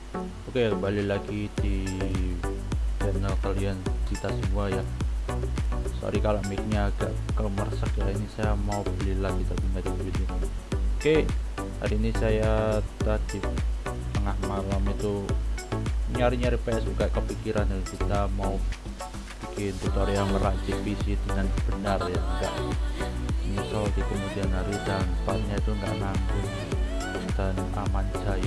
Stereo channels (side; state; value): both; identical; correlation 1.00